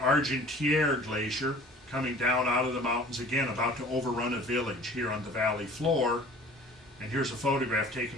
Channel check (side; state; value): both; normal; correlation 0.47